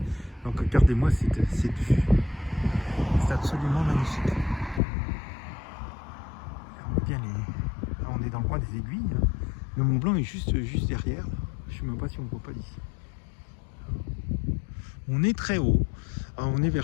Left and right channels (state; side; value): drops out; right; at 4.8 s